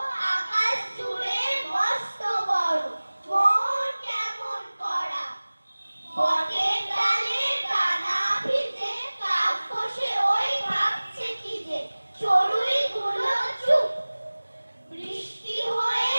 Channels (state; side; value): inverted; both; correlation -1.00